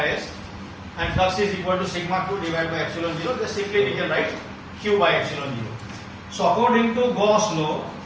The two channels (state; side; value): identical; both; correlation 1.00